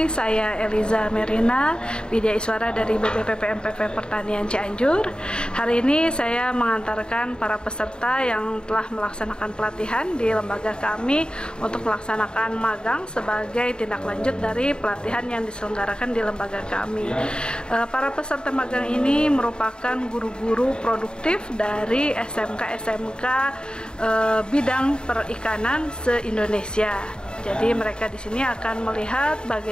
Saya Eliza Merina, Widya Iswara dari BPPP MPV Pertanian Cianjur. Hari ini saya mengantarkan para peserta yang telah melaksanakan pelatihan di lembaga kami untuk melaksanakan magang sebagai tindak lanjut dari pelatihan yang diselenggarakan di lembaga kami. Para peserta magang ini merupakan guru-guru produktif dari SMK-SMK bidang perikanan se-Indonesia. Jadi mereka di sini akan melihat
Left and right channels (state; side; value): late; right; 0.049 ms